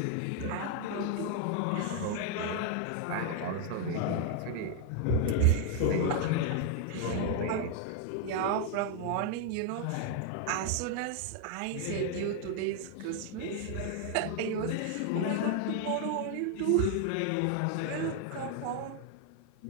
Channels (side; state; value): both; different; correlation 0.00